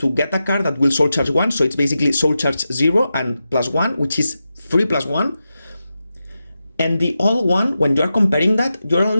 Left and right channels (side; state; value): both; inverted; correlation -0.90